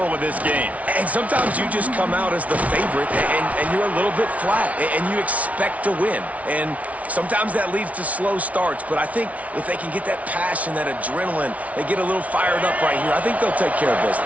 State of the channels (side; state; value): left; late; 0.068 ms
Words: of this game. And sometimes you just come out as the favorite, and you're a little bit flat, and you expect to win. And sometimes that leads to slow starts, but I think if they can get that passion, that adrenaline, they get a little fired up right here, I think they'll take care of